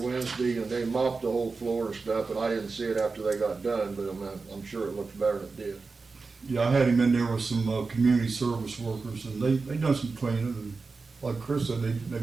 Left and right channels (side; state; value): left; quieter; 4.2 dB